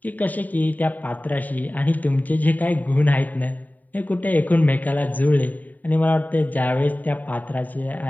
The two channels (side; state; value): right; late; 0.080 ms